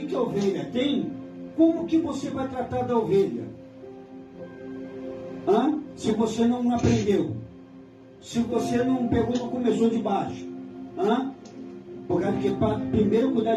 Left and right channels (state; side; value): identical; both; correlation 1.00